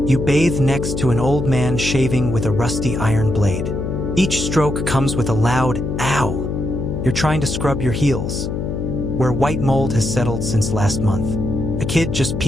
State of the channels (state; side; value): noise; left; hum, 3 dB below the sound